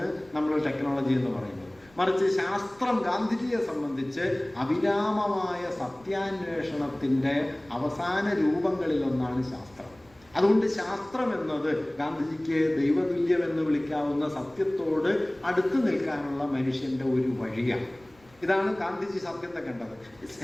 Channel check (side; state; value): left; noise; rumble, 29 dB below the sound